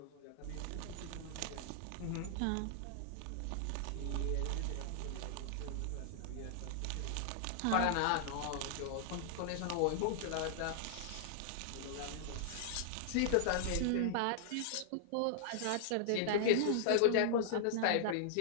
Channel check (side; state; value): both; different; correlation -0.01